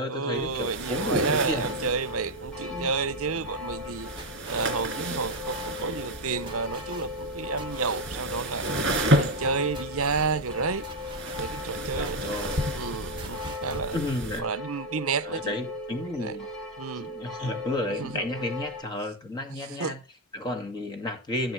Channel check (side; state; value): both; normal; correlation 0.08